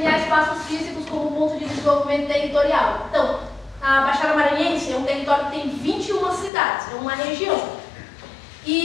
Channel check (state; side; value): drops out; right; at 6.5 s